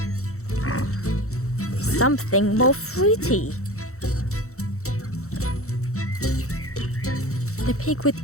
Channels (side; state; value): right; late; 0.64 ms